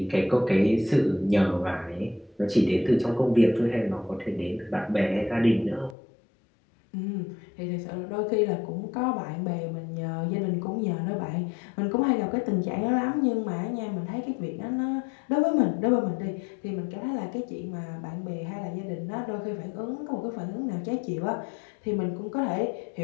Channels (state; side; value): drops out; right; at 6.0 s